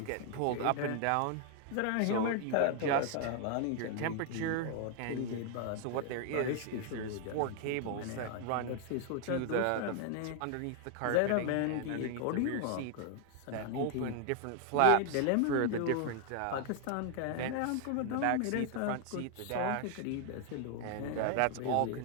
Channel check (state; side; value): different; both; correlation 0.00